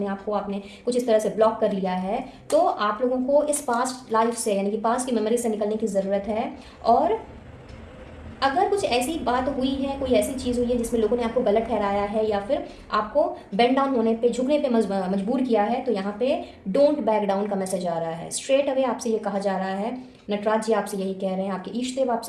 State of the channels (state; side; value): identical; both; correlation 1.00